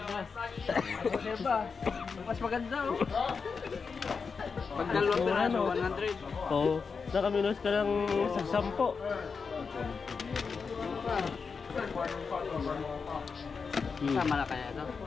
Mas maganda oh. Pag dalawang piraso, 100. Oo. Nakaminos ka lang sa 10. Tama na kaya ito?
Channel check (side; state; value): right; quieter; 5.3 dB